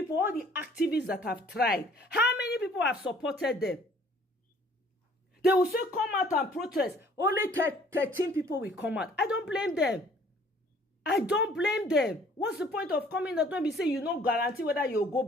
all the activists that have tried, how many people have supported them? They will say, come out and protest. Only 13 people will come out. I don't blame them. What's the point of coming out when we say you don't guarantee whether you'll go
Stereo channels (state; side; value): normal; both; correlation 0.56